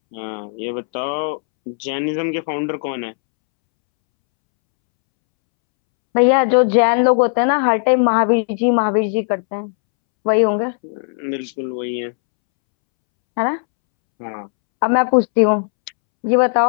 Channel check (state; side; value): silent; right; 68 dB below the other